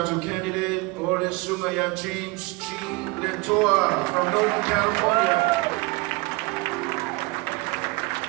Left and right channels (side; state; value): left; quieter; 24.1 dB